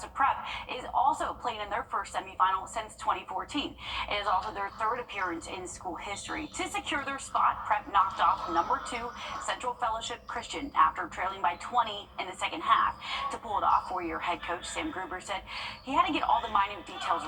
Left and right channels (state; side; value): identical; both; correlation 1.00